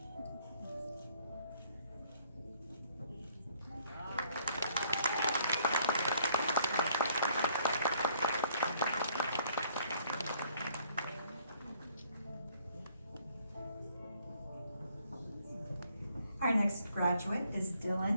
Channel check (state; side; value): inverted; both; correlation -0.64